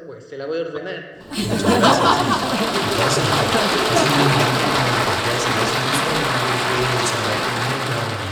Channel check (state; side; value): identical; both; correlation 1.00